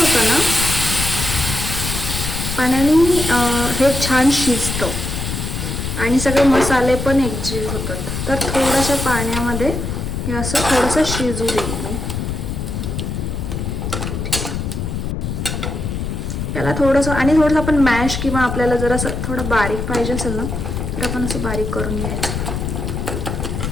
ना, पाण्याने हे छान शिजतं आणि सगळे मसाले पण एकजीव होतात. तर थोड्याशा पाण्यामध्ये हे असं थोडंसं शिजू देईल. त्याला थोडंसं आणि थोडंसं आपण मॅश किंवा आपल्याला जर असं थोडं बारीक पाहिजे असेल ना तर आपण असं बारीक करून घ्यायचं.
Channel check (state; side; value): noise; left; rumble, 3 dB below the sound